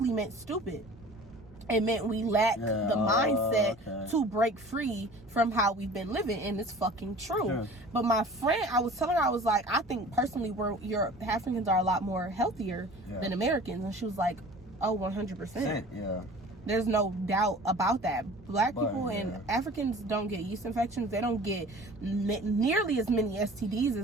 meant stupid. It meant we lack the mindset to break free from how we've been living, and it's fucking true. But my friend, I was telling her, I was like, I think personally Africans are a lot more healthier than Americans, and she was like, oh, 100%. Yeah. There's no doubt about that. Black people and Africans don't get yeast infections. They don't get nearly as many STDs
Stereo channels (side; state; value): both; normal; correlation 0.44